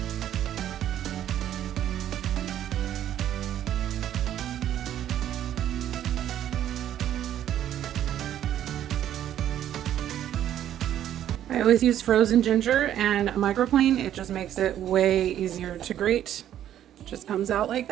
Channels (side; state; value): left; quieter; 11.2 dB